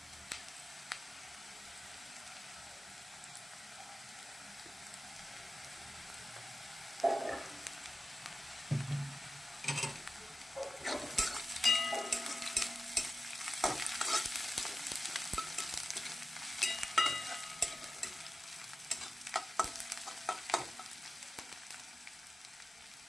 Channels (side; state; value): both; normal; correlation 0.94